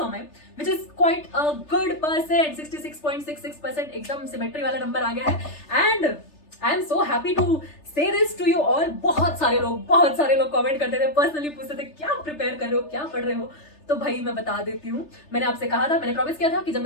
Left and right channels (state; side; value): late; right; 3.3 ms